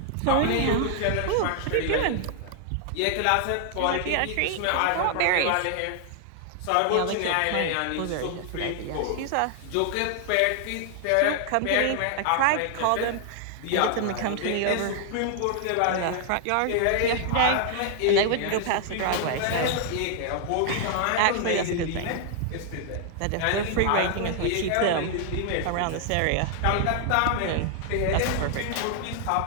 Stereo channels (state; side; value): different; both; correlation 0.00